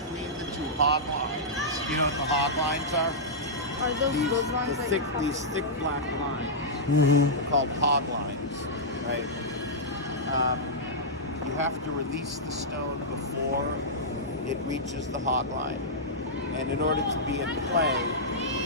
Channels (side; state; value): both; normal; correlation -0.11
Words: the two hog lines, you know what the hog lines are? Are those lines These thick black lines. Mm-hmm. They're called hog lines, right? You have to release the stone before it reaches the hog line, and in order to be in play,